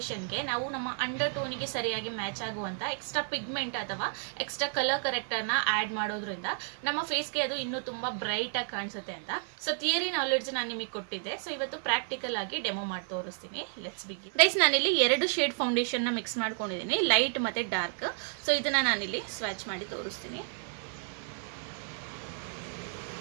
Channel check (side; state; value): left; silent; 57 dB below the other